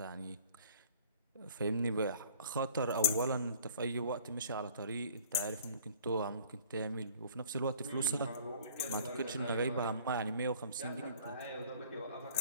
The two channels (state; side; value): inverted; both; correlation -0.52